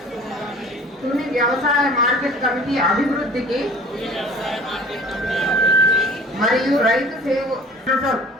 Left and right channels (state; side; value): normal; both; correlation 0.45